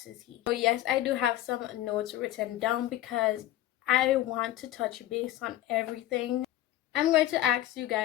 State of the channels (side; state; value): right; quieter; 13.7 dB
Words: So yes, I do have some notes written down because I want to touch base on everything. I'm going to ask you